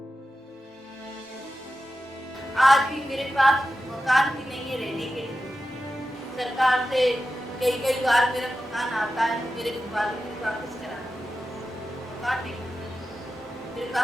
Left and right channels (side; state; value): both; normal; correlation 0.92